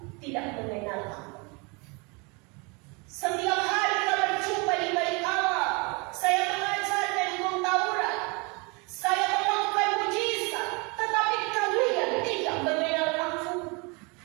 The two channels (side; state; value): left; quieter; 29.8 dB